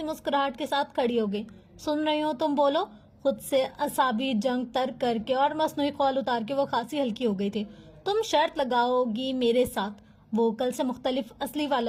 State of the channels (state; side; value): identical; both; correlation 1.00